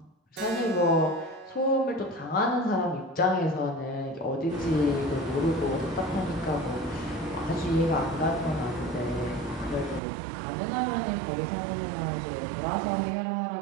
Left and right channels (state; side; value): drops out; left; at 10.0 s